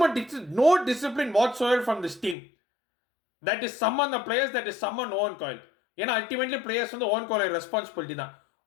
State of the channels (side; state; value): right; drops out; at 2.4 s